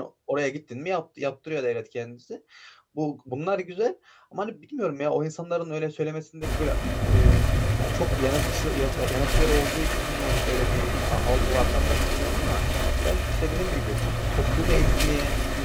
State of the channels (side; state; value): both; identical; correlation 1.00